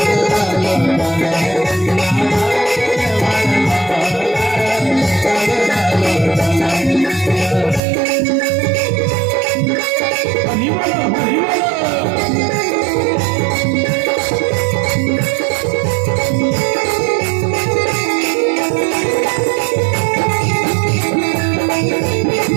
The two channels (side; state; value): left; drops out; at 7.8 s